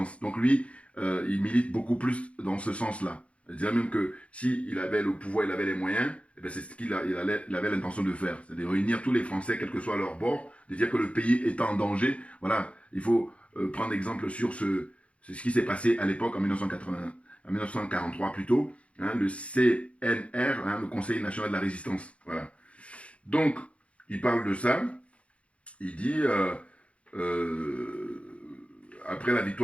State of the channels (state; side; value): late; right; 0.062 ms